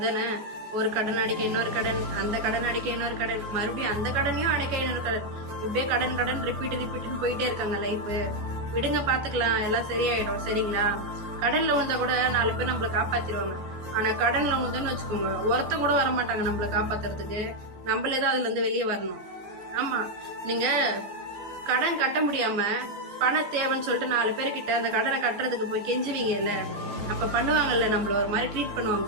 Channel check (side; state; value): left; late; 14 ms